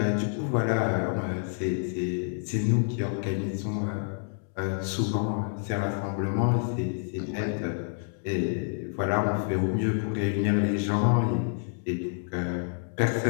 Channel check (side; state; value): right; silent; digital silence